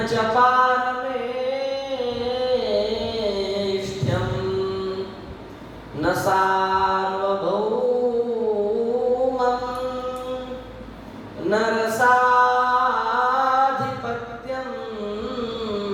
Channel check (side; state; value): both; identical; correlation 1.00